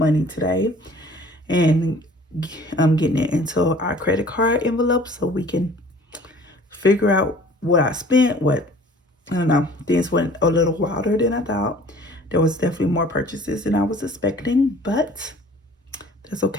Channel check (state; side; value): normal; both; correlation 0.50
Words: today and getting it into our credit card envelope so we can figure out what I spent, I don't know, things went a little wilder than I thought. There was definitely more purchases than I was expecting, but that's